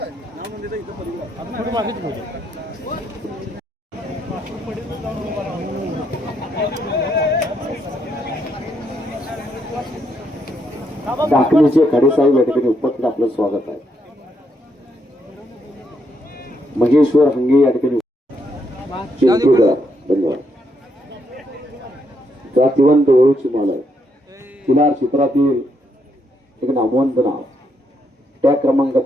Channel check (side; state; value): both; normal; correlation 0.77